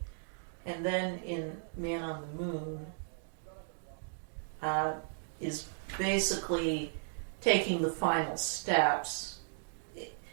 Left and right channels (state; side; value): silent; left; digital silence